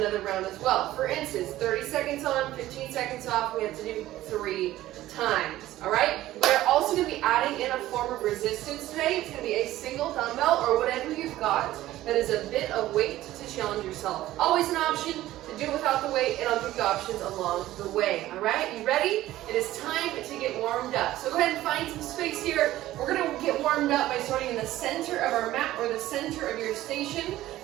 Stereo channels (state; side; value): quieter; left; 15.1 dB